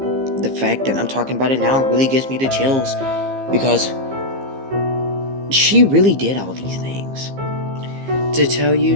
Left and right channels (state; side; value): late; left; 15 ms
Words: The fact that I'm talking about it now really gives me the chills because she really did all these things. To tell you